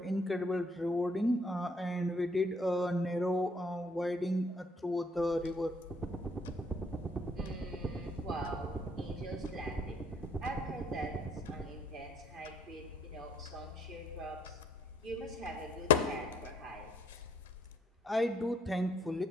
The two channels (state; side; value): normal; both; correlation 0.64